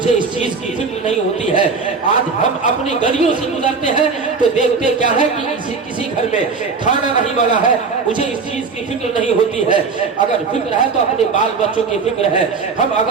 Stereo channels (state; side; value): quieter; left; 4.8 dB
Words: اس چیز کی فکر نہیں ہوتی ہے. آج ہم اپنی گلیوں سے گزرتے ہیں تو دیکھتے کیا ہے کہ کسی گھر میں کھانا نہیں بنا ہے, مجھے اس چیز کی فکر نہیں ہوتی ہے. اگر فکر ہے تو اپنے بال بچوں کی فکر ہے. ہم